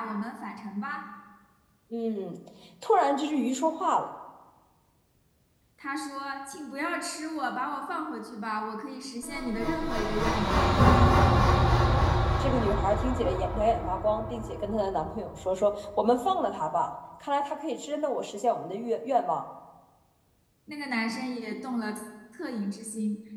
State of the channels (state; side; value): identical; both; correlation 1.00